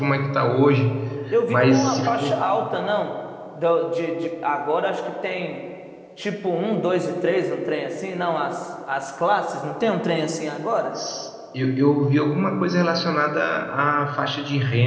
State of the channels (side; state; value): both; identical; correlation 1.00